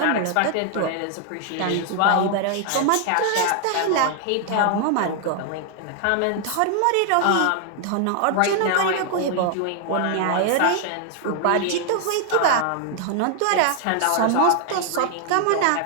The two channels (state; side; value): different; both; correlation 0.00